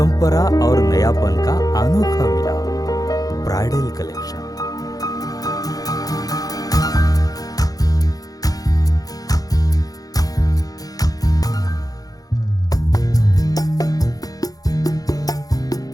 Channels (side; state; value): right; late; 0.18 ms